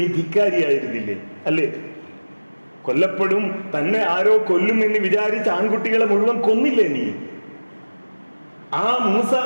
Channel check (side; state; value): both; inverted; correlation -1.00